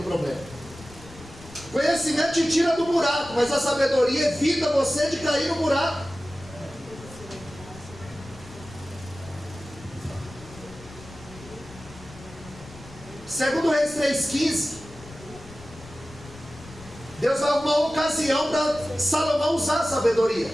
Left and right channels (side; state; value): left; noise; rumble, 18 dB below the sound